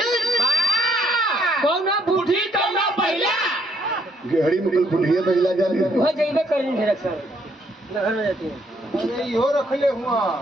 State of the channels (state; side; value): normal; both; correlation 0.69